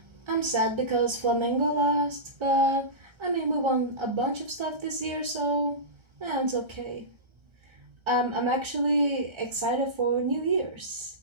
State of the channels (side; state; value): left; late; 1.3 ms